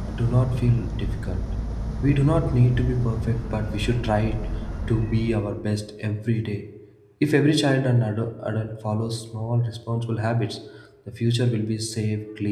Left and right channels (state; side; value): identical; both; correlation 1.00